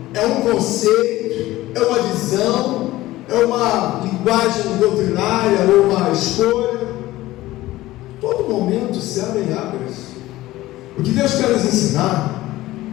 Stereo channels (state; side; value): quieter; right; 16.9 dB